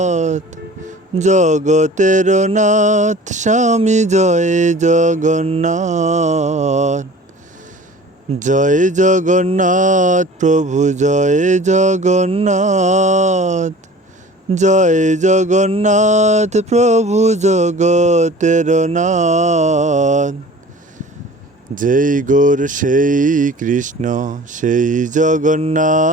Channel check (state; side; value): normal; both; correlation 0.43